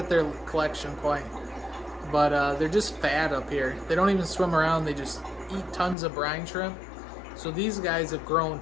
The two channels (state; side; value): drops out; right; at 6.0 s